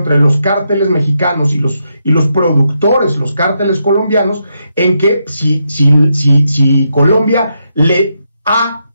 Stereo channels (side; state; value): both; inverted; correlation -0.82